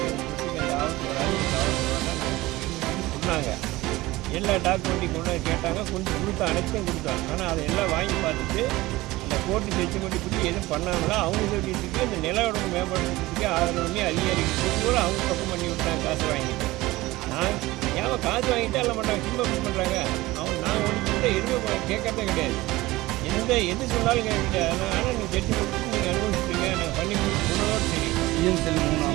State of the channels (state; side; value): quieter; left; 19.1 dB